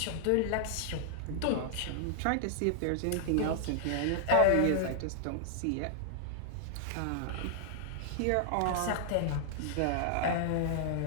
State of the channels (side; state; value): both; different; correlation -0.01